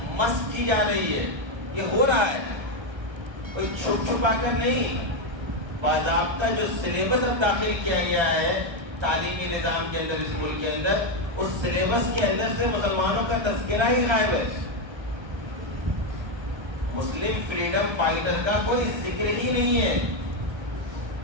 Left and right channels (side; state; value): left; late; 1.3 ms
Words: مسخ کی جا رہی ہے. یہ ہو رہا ہے، کوئی چھپ چھپا کر نہیں. باضابطہ جو سلیبس اب داخل کیا گیا ہے تعلیمی نظام کے اندر اس ملک کے اندر، اس سلیبس کے اندر سے مسلمانوں کا تذکرہ ہی غائب ہے. مسلم فریڈم فائٹر کا کوئی ذکر ہی نہیں ہے،